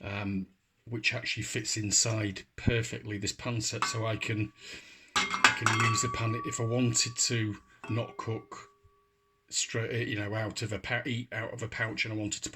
which actually fits inside perfectly this pan set, so I can use the pan if I wanted to not cook straight, you know, out of a pouch, and I wanted to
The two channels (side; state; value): both; identical; correlation 1.00